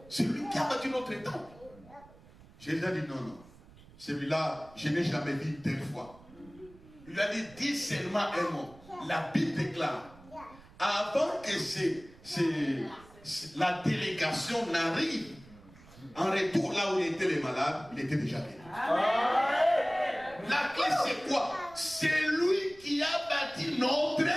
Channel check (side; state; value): right; noise; rumble, 23 dB below the sound